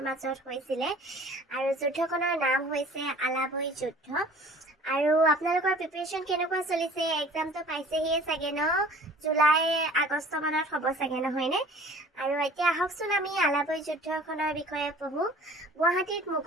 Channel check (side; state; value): both; normal; correlation 0.48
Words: মাজত হৈছিলে আৰু যুদ্ধখনৰ নাম হৈছে আলাবৈ যুদ্ধ। আৰু আপোনালোকৰ প্ৰিপাৰেশ্যন কেনেকুৱা চলিছে? এক্সামটো পাইছেহিয়ে চাগে ন? জুলাই আগষ্ট মানত হ'ব চাগে, নহয়নে? আৰু এতিয়া আহকচোন আমি আলাবৈ যুদ্ধখনৰ বিষয়ে পঢ়োঁ। গুৱাহাটীত